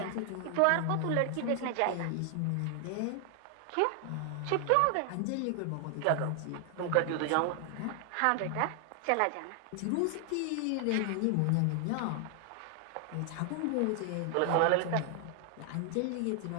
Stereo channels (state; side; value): different; both; correlation 0.00